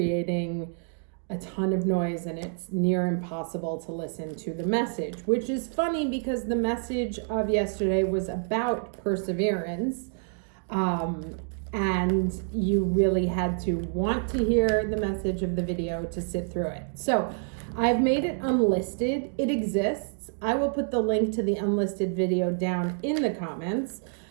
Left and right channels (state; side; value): silent; left; 60 dB below the other